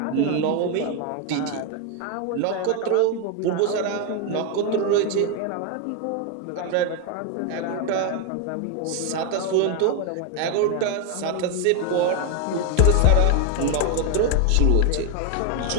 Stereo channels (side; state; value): both; different; correlation 0.01